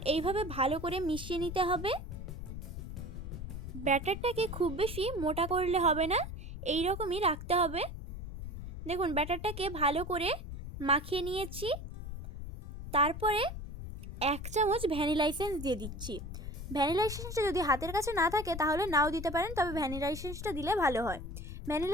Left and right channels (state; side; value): noise; left; rumble, 8 dB below the sound